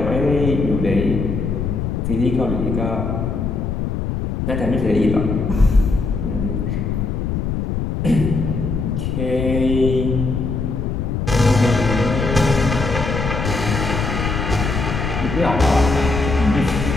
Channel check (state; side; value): noise; left; rumble, 2 dB below the sound